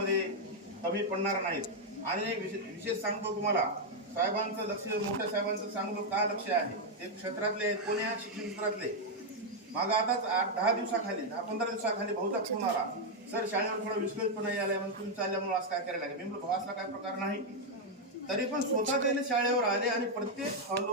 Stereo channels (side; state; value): both; normal; correlation 0.00